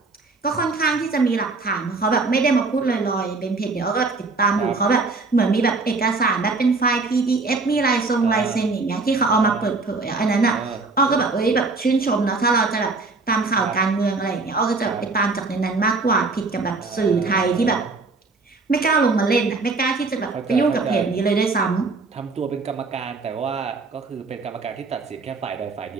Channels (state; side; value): quieter; left; 3.8 dB